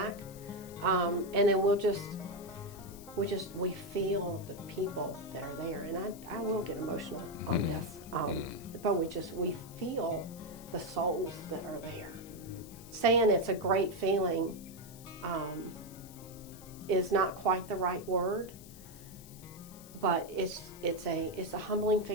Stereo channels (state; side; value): noise; left; hiss, 19 dB below the sound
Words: and then we feel the people that are there, and I will get emotional on this, but we feel the souls that are there. Saying it's a great feeling is not quite the right word. But it's a humbling